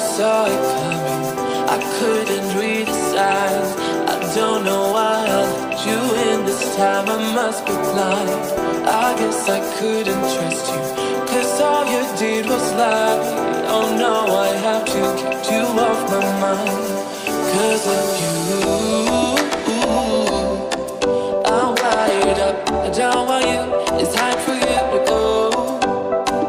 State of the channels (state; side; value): identical; both; correlation 1.00